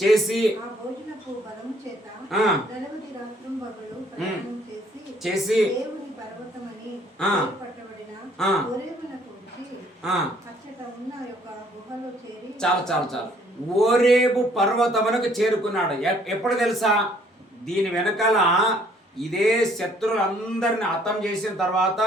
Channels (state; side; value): normal; both; correlation 0.62